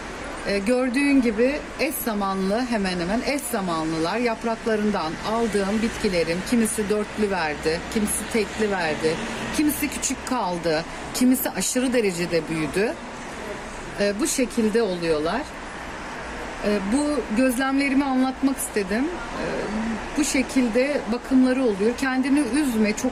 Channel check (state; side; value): identical; both; correlation 1.00